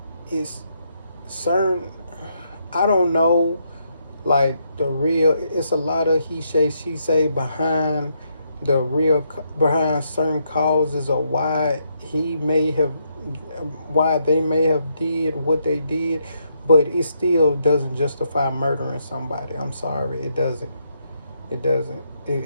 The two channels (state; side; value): inverted; both; correlation -0.77